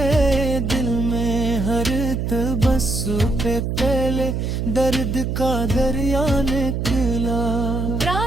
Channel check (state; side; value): noise; right; hum, 1 dB below the sound